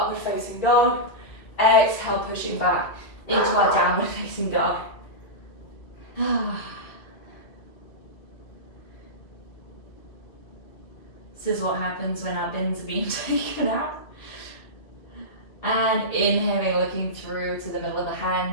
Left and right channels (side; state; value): right; late; 2.4 ms